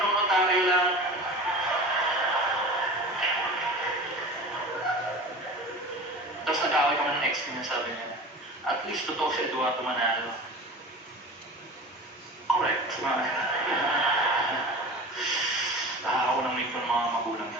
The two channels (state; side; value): normal; both; correlation 0.36